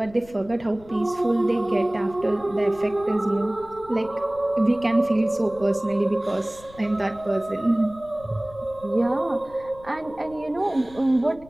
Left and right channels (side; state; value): left; noise; rumble, 22 dB below the sound